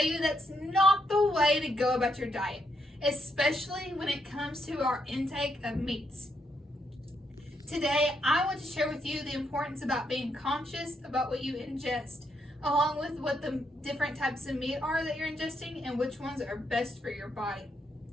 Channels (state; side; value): normal; both; correlation 0.78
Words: you that's not the way to go about your diet, especially when it comes to our intake of meats. Today, I want to share with you the importance about being conscious about what you ingest, along with what the different types of meat are that you're ingesting and which ones are best for your body.